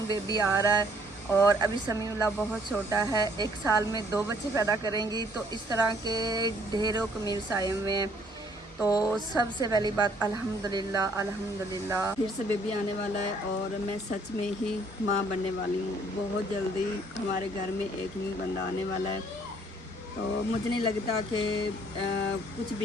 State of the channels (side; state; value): both; normal; correlation 0.62